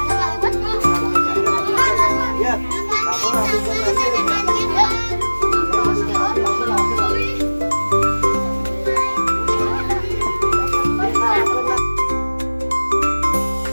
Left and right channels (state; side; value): inverted; both; correlation -1.00